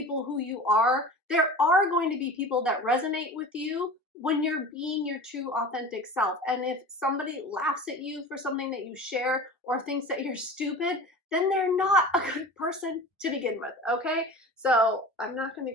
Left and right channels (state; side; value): normal; both; correlation 0.36